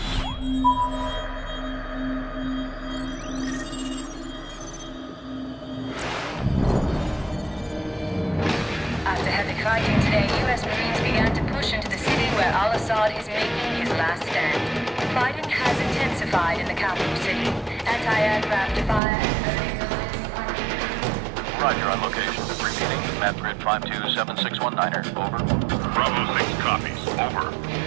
After heavy fighting today, U.S. Marines began to push into the city where al-Assad is making his last stand. Fighting has intensified in the capital city. Anti-aircraft fire and Roger on location. Repeating, map grid 527619er. Over. Bravo 6 copies. Over.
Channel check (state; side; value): drops out; left; at 19.0 s